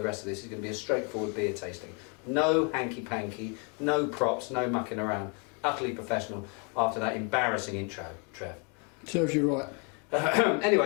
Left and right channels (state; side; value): quieter; right; 35.7 dB